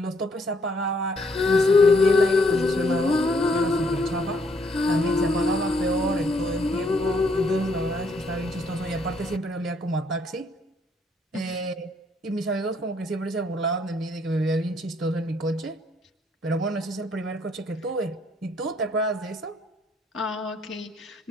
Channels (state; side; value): normal; both; correlation 0.69